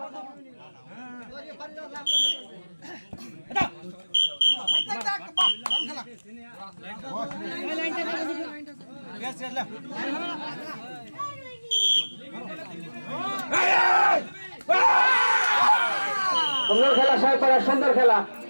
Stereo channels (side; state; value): both; inverted; correlation -1.00